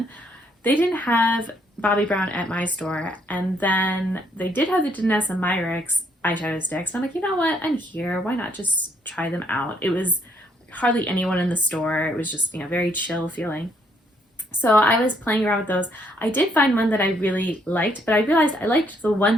They didn't have Bobbi Brown at my store, and then they did have the Danessa Myricks eyeshadow sticks. I'm like, you know what? I'm here. Why not just try them out? It was hardly anyone in the store. It was just, you know, very chill feeling. So I was playing around with those. I did find one that I really liked, but I realized I liked the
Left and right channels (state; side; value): normal; both; correlation 0.69